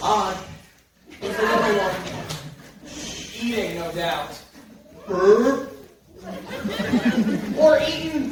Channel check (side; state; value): both; identical; correlation 1.00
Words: Odd. It's a little one. Eating, no doubt. Brr. Or